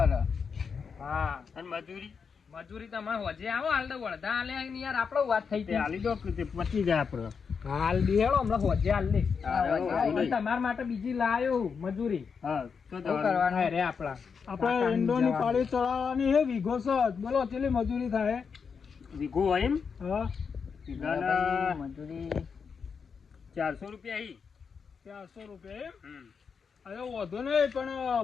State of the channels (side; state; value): right; quieter; 5.9 dB